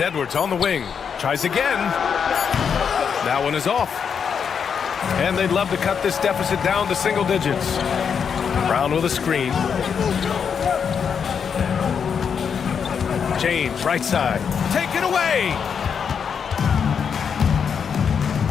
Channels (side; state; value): right; quieter; 6.9 dB